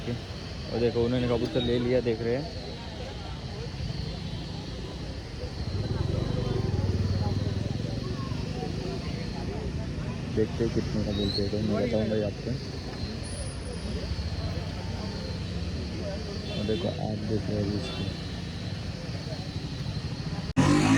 और देखो उन्होंने कबूतर ले लिया, देख रहे हैं। देखते कितने का बोलते हैं तो मैं बताऊँगा आपको। देखो आप देखो अभी इसको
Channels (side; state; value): both; identical; correlation 1.00